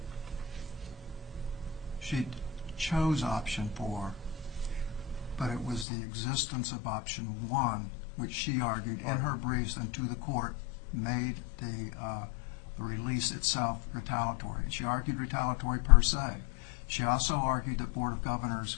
She chose option 4, but it was the existence of option 1, which she argued in her briefs and to the court, made the release itself retaliatory. She argued retaliatory per se. She also argued that Board of Governors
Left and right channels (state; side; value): drops out; right; at 5.9 s